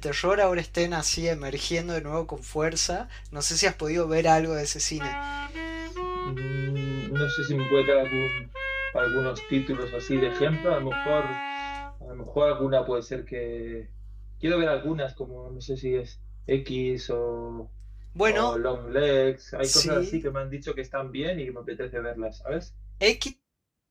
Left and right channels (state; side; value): identical; both; correlation 1.00